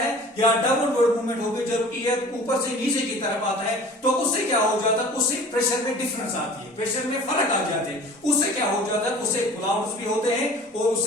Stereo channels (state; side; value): normal; both; correlation 0.44